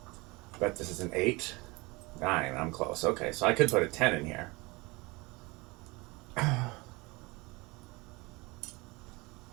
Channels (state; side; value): quieter; left; 24.6 dB